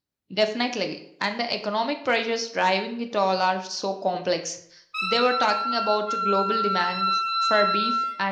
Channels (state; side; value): identical; both; correlation 1.00